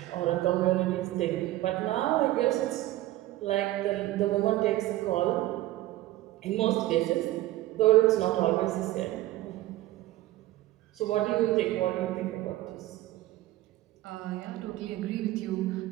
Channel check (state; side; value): quieter; left; 16.1 dB